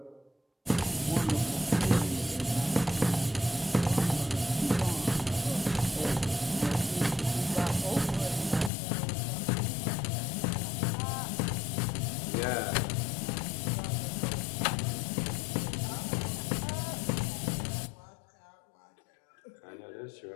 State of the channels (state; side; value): drops out; right; at 8.7 s